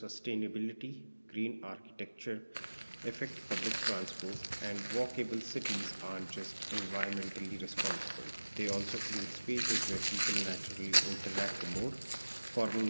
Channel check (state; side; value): inverted; both; correlation -1.00